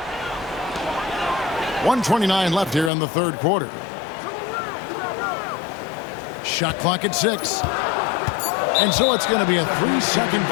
1:29 left here in the third quarter. Shot clock at 6. And so it's going to be a 3-second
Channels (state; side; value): drops out; right; at 2.9 s